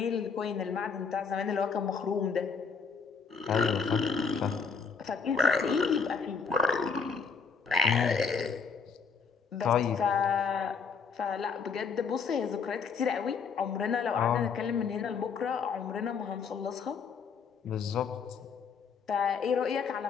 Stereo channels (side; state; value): right; quieter; 5.6 dB